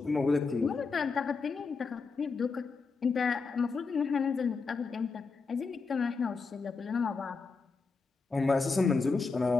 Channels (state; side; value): quieter; right; 4.6 dB